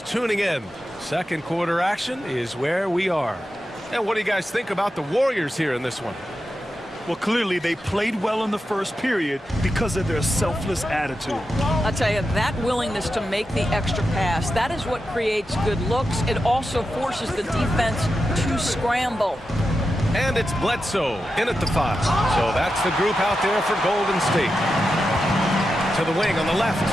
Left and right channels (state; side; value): normal; both; correlation 0.90